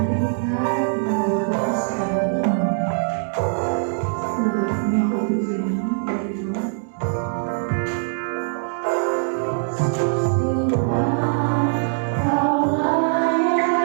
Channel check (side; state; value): left; silent; digital silence